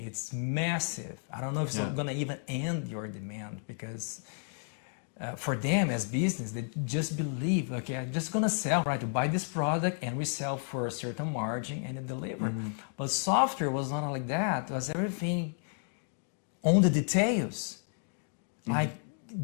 massive. I don't know if it's going to even end your demand, because for them as business, they just believe, okay, I'm just going to sell, right? To buy this product and we sell for a certain margin and deliver. But software was not like that. It was everything on the details. Like,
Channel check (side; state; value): right; silent; 55 dB below the other